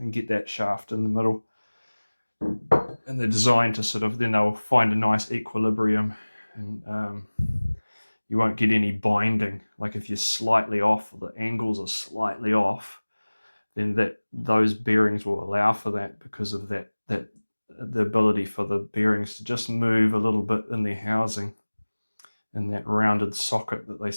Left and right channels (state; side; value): inverted; both; correlation -1.00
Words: get that shaft in the middle. And they're designed to sort of, then they'll find a nice equilibrium, and you won't get any binding. Like if you're slightly off, or the angles are slightly off, then those bearings will allow for that, because of the ability for the bearings to just move a little bit in their housing, in that rounded socket that they